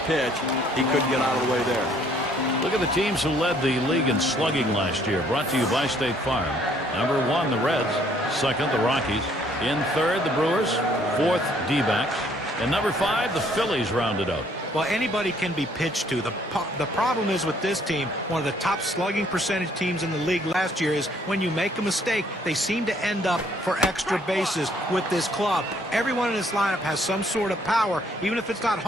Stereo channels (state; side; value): normal; both; correlation 0.64